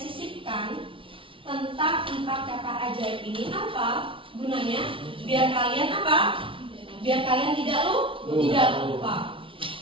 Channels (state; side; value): late; left; 0.25 ms